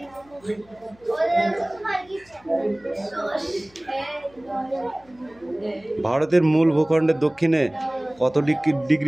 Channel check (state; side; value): noise; left; hum, 29 dB below the sound